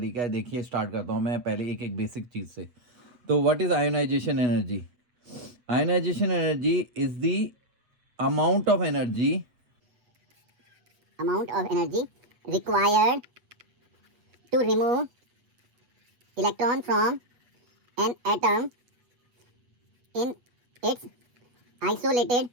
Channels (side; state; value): left; late; 8.3 ms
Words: है। देखिए स्टार्ट करता हूँ मैं पहले एक एक बेसिक चीज़ से। तो what is ionization energy? Ionization energy is the amount of energy required to remove electron from an atom in its isolated